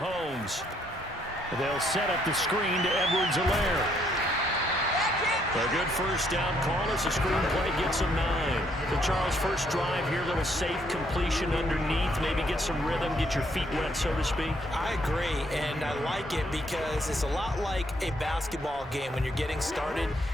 They'll set up the screen to Edwards-Helaire. A good first down call as the screenplay gets him 9. So Charles, first drive here, little safe completion underneath, maybe get some rhythm, get your feet wet, so to speak. I agree, and I like it because it's a lot like a basketball game when you're getting started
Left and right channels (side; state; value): both; normal; correlation 0.70